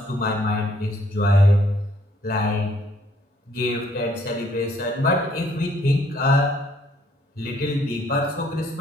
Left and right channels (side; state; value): both; normal; correlation 0.65